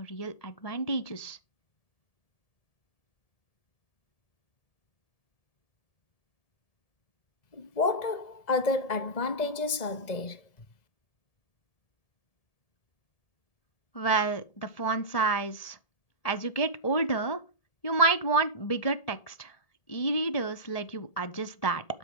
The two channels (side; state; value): right; late; 1.7 ms